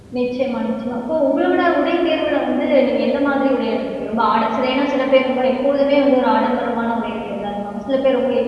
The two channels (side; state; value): both; identical; correlation 1.00